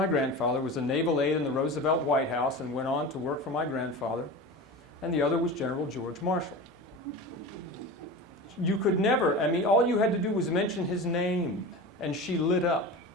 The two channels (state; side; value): normal; both; correlation 0.31